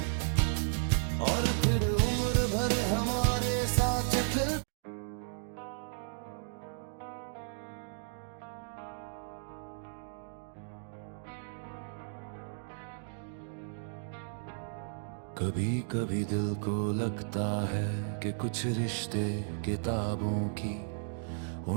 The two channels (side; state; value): left; silent; digital silence